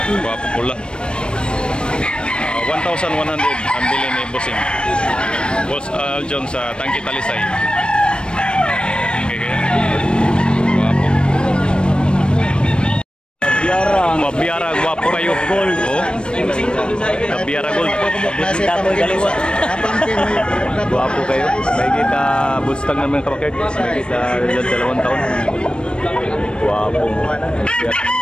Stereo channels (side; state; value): right; late; 0.055 ms